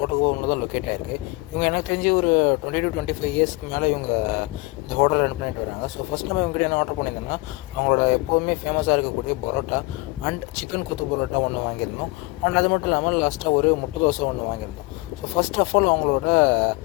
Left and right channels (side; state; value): right; quieter; 23.5 dB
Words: கோட்டகுப்பம்ல தான் லொக்கேட் ஆகிருக்கு. இவங்க எனக்கு தெரிஞ்சு ஒரு 20 to 25 இயர்ஸ்க்கு மேலே இவங்க இந்த ஹோட்டல் ரன் பண்ணிட்டு வராங்க. ஸோ ஃபஸ்ட் நம்ம இவங்ககிட்ட என்ன ஆர்டர் பண்ணியிருந்தோம்னா, அவங்களோட எப்போவுமே ஃபேமஸாக இருக்கக்கூடிய பரோட்டா அண்ட் சிக்கன் கொத்து பரோட்டா ஒன்று வாங்கியிருந்தோம். அண்ட் அது மட்டும் இல்லாமல் லாஸ்ட்டாக ஒரு முட்டை தோசை ஒன்று வாங்கியிருந்தோம். ஸோ ஃபஸ்ட் ஆஃப் ஆல் அவங்களோட